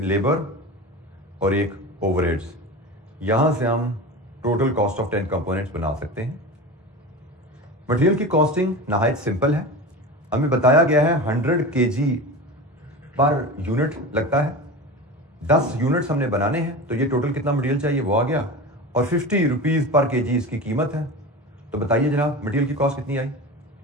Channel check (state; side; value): normal; both; correlation 0.29